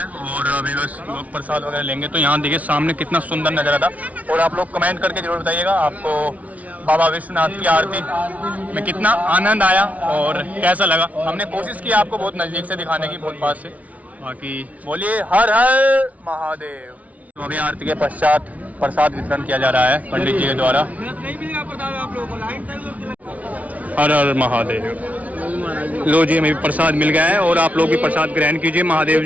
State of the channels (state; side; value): late; left; 0.069 ms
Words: और अभी बस लोग प्रसाद वगैरह लेंगे। तो यहाँ देखिए सामने कितना सुंदर नज़ारा था, और आप लोग कमेंट करके जरूर बताइएगा आपको बाबा विश्वनाथ की आरती में कितना आनंद आया और कैसा लगा। हमने कोशिश की आपको बहुत नज़दीक से दिखाने की, बहुत पास से। बाकी बोलिए हर हर महादेव। तो अभी आरती के पश्चात प्रसाद वितरण किया जा रहा है पंडित जी के द्वारा। हर हर महादेव। लो जी, हमें भी प्रसाद मिल गया है और आप लोग भी प्रसाद ग्रहण कीजिए महादेव